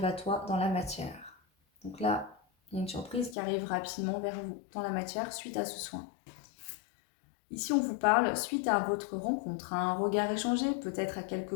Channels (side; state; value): right; drops out; at 3.4 s